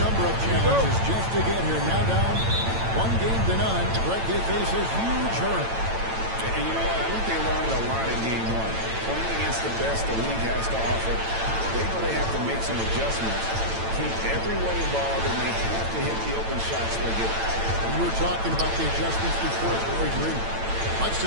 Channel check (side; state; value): left; late; 8.9 ms